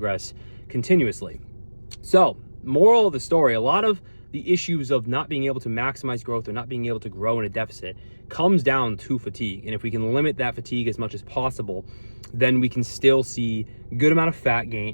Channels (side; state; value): both; inverted; correlation -1.00